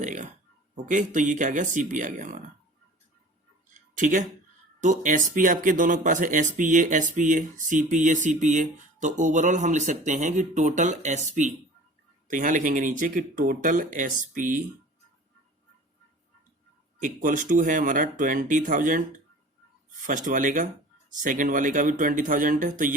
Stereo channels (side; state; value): both; normal; correlation 0.43